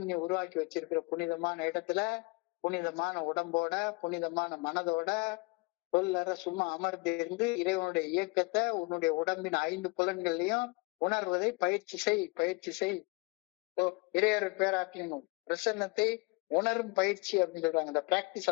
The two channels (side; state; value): right; quieter; 27.5 dB